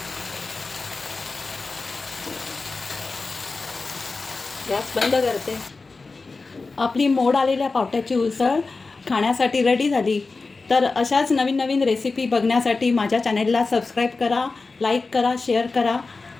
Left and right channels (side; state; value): right; quieter; 3.9 dB